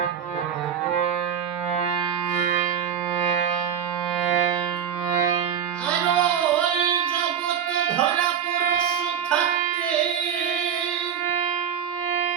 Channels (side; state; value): left; quieter; 8.3 dB